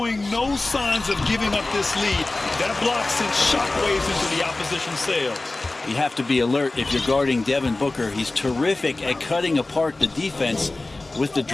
no signs of giving up this lead. That block sent shockwaves into the opposition sails. You have to be alert if you're guarding Devin Booker. He's terrific at cutting apart the defense with the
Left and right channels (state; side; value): quieter; right; 3.1 dB